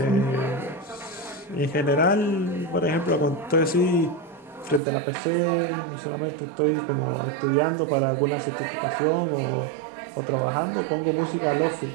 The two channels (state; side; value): drops out; left; at 4.8 s